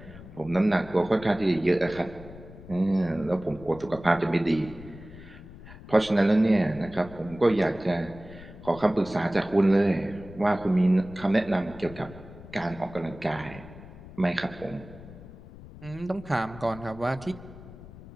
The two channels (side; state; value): left; noise; rumble, 17 dB below the sound